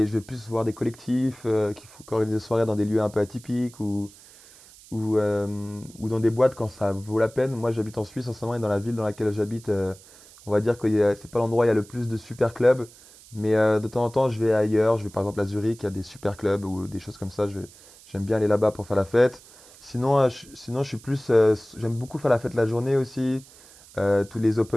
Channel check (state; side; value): noise; right; hiss, 23 dB below the sound